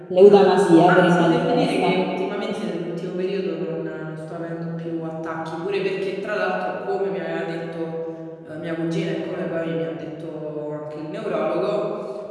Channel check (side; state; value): both; identical; correlation 1.00